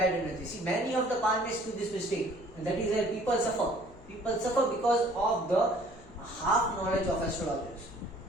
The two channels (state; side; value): noise; left; hum, 22 dB below the sound